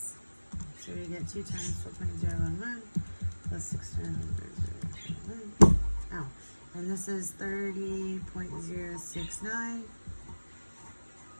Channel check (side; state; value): both; inverted; correlation -1.00